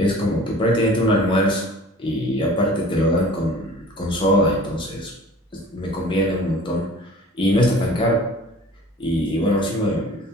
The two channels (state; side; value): normal; both; correlation 0.46